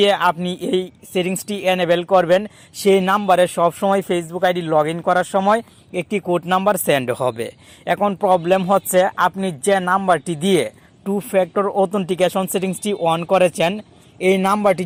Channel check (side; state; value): both; identical; correlation 1.00